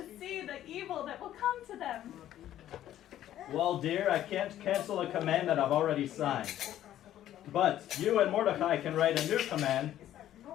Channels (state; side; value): quieter; right; 12.2 dB